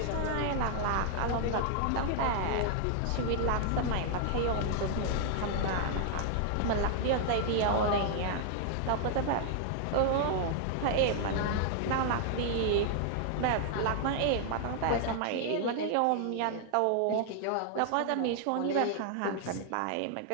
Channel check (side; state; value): both; different; correlation 0.00